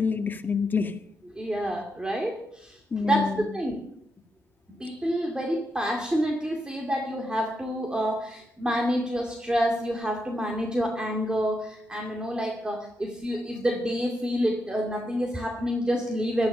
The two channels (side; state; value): both; normal; correlation 0.83